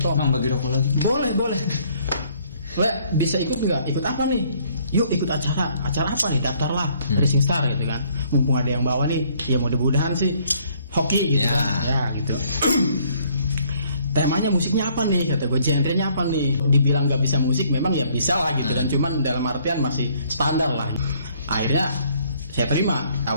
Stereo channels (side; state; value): both; inverted; correlation -0.63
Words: Mang, bagi rokok lagi. Boleh. Le, bisa ikut nggak? Ikut apa nih? Yuk ikut acara apa nih? Daftarlah Rising Star gitu kan. Mumpung ada yang bawa nih, ya mudah-mudahan sih hoki gitu kan. Ya gitu. Temanya musiknya apa nih? Kata gue, genrenya apa nih? Dibilang nggak bisa musik, memang ya bisa lah gitu kan. Cuman dalam artian masih standar lah. Akhirnya saya terima